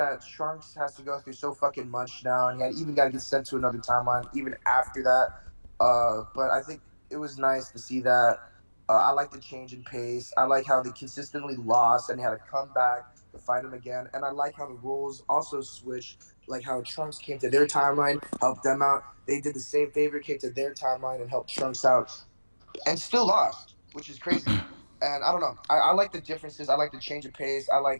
Trunks has to go through so fucking much now, and he even got to get sent to another timeline even after that. But I think it was nice to see that. I like the change in pace. I like how they consistently lost and they had to come back to fight him again. And I like how the roles also switched. Like how Trunks came to their timeline, helped them out. They did the same favor, came to their timeline and helped Trunks out, and still lost, which is crazy. And I don't know. I like the differences. I like the change of pace. I like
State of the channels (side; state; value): both; inverted; correlation -1.00